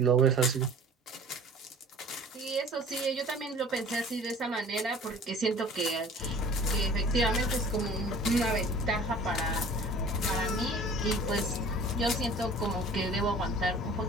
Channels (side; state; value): both; normal; correlation 0.46